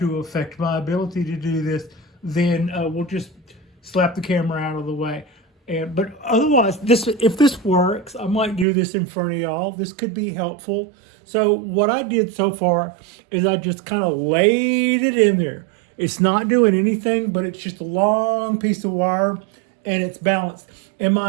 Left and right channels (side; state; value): left; drops out; at 8.7 s